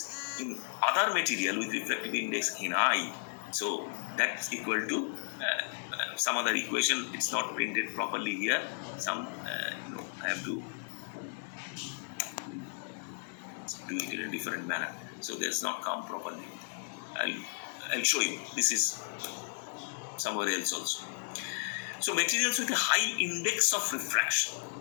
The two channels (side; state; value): right; silent; 55 dB below the other